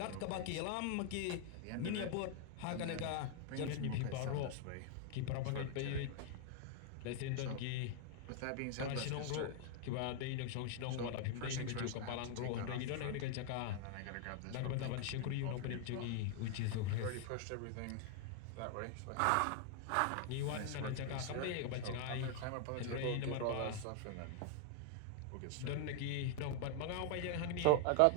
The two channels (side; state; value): both; different; correlation 0.00